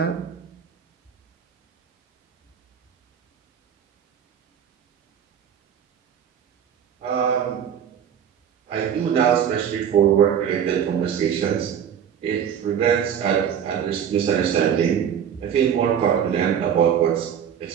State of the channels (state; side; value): quieter; left; 8.6 dB